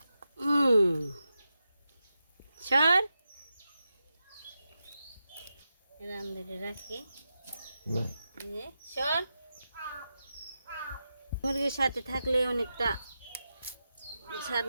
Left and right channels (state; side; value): inverted; both; correlation -0.89